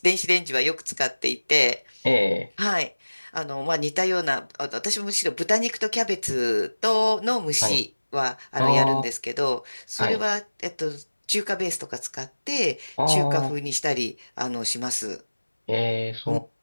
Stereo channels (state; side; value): inverted; both; correlation -1.00